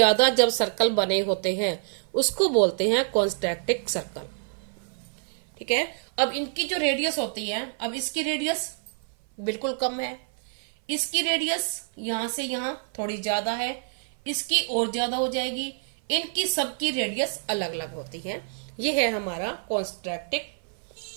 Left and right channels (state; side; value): silent; left; 56 dB below the other